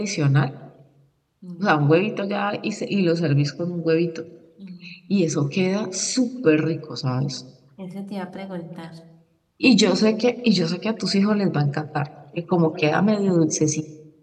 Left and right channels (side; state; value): both; identical; correlation 1.00